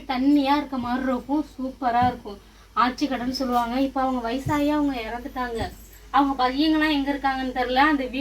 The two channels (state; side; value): identical; both; correlation 1.00